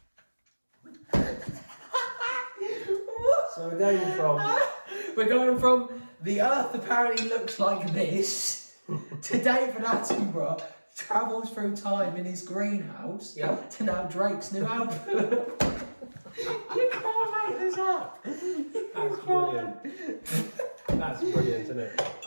So We're going from the Earth apparently looks like this to David Attenborough travels through time in his greenhouse to now Drake's new album. You can't make this up. That's brilliant. That's brilliant, isn't it?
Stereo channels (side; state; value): both; inverted; correlation -1.00